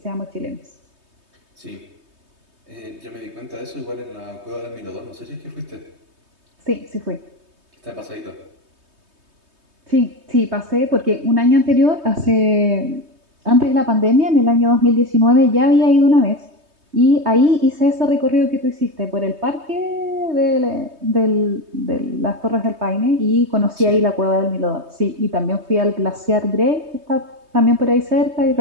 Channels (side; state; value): left; late; 3.2 ms